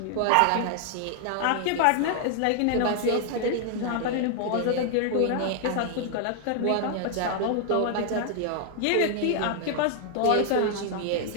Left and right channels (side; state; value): both; different; correlation 0.00